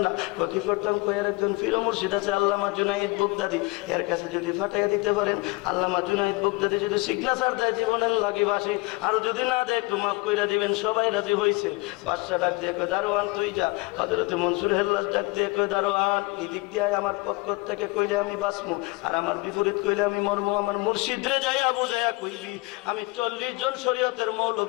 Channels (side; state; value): right; quieter; 23.9 dB